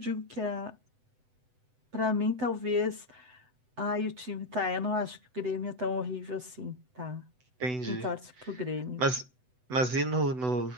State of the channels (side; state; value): left; late; 7.9 ms